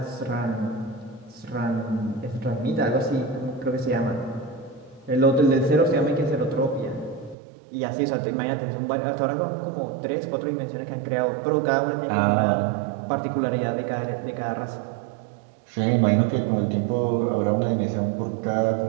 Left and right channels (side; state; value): left; drops out; at 7.4 s